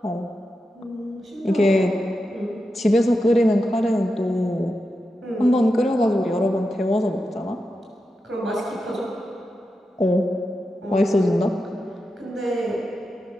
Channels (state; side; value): normal; both; correlation 0.89